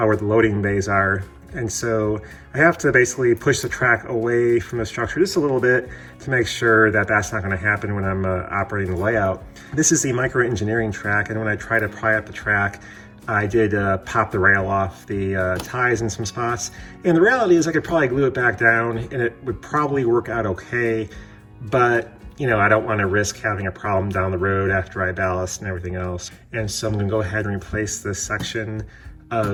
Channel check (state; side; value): identical; both; correlation 1.00